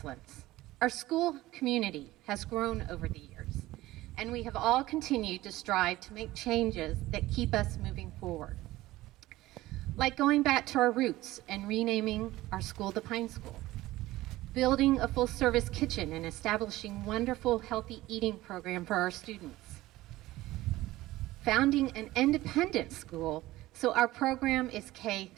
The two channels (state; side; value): quieter; left; 17.2 dB